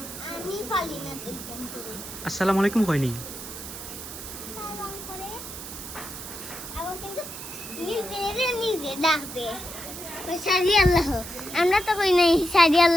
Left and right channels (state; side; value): noise; right; hiss, 11 dB below the sound